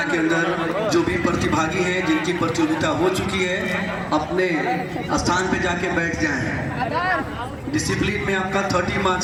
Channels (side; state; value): both; identical; correlation 1.00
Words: के अंदर जो भी प्रतिभागी हैं जिनकी प्रतियोगिता हो चुकी है अपने स्थान पे जाके बैठ जाएं। डिसिप्लिन में आपका 30